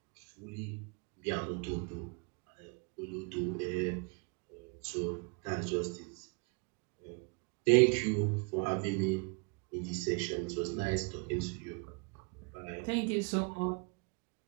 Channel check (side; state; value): left; quieter; 32.5 dB